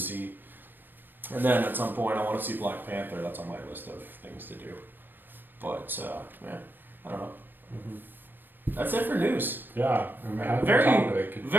And then at some point I want to see Black Panther. That's on my list of things to do. But I don't know. Mm-hmm. That's it for news. Yeah,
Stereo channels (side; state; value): left; late; 0.093 ms